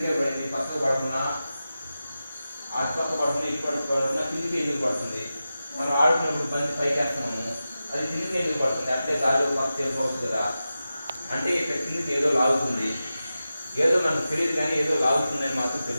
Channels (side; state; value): both; inverted; correlation -0.93